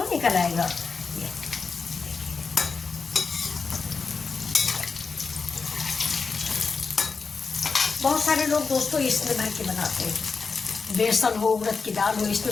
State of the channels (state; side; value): quieter; right; 4.8 dB